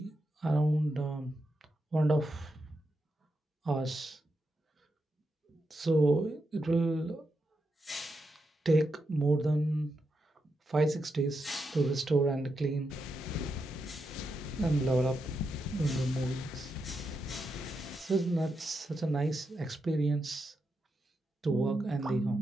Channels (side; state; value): both; normal; correlation 0.85